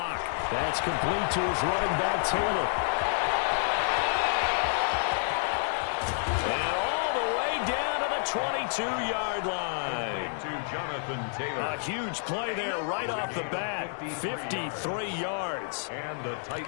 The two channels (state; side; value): silent; right; 58 dB below the other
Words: That's complete to his running back, Taylor. And all the way down to the 22-yard line. To Jonathan Taylor. A huge play there right off the bat. 53 yards. And the